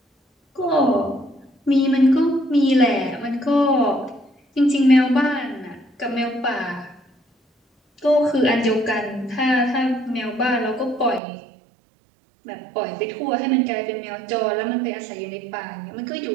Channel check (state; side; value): drops out; left; at 11.2 s